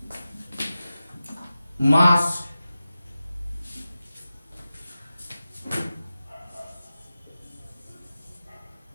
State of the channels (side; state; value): both; inverted; correlation -0.94